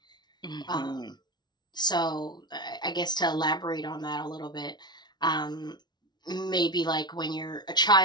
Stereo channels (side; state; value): right; late; 0.20 ms